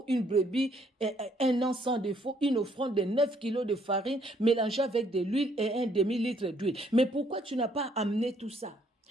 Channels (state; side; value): normal; both; correlation 0.67